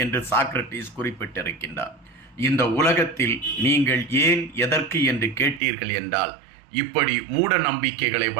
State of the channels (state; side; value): drops out; left; at 5.6 s